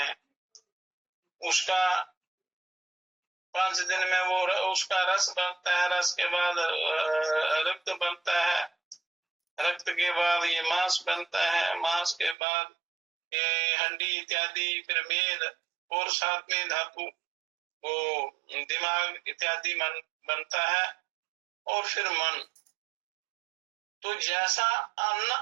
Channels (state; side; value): drops out; left; at 12.4 s